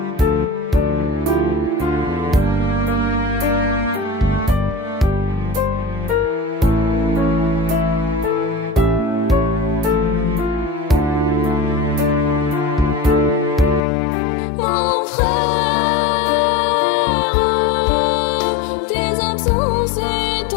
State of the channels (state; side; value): drops out; right; at 13.8 s